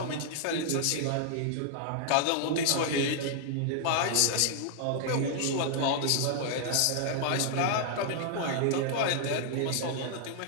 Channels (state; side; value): different; both; correlation -0.01